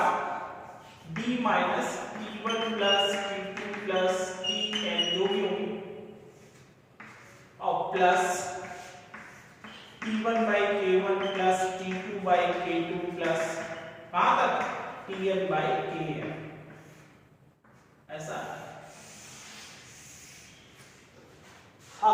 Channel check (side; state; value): both; identical; correlation 1.00